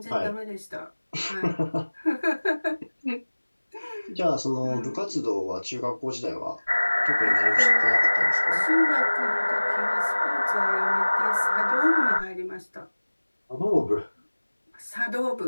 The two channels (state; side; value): inverted; both; correlation -1.00